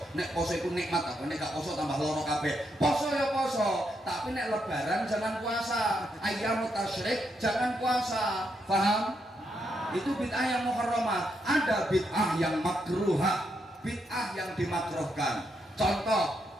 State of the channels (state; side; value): normal; both; correlation 0.80